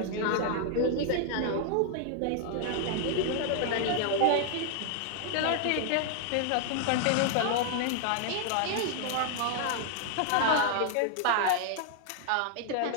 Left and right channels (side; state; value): both; different; correlation 0.00